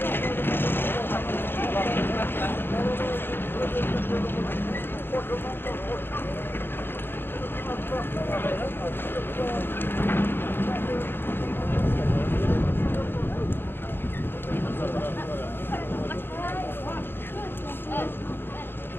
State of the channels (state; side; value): late; right; 0.10 ms